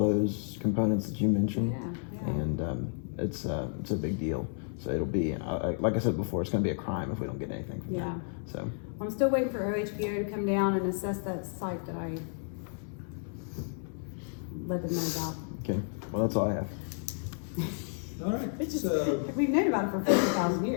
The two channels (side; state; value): right; silent; 57 dB below the other